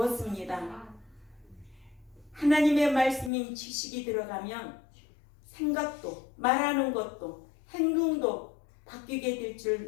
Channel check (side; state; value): right; drops out; at 3.3 s